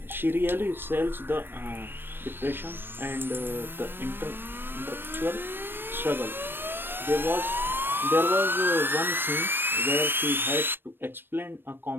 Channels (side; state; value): left; late; 0.098 ms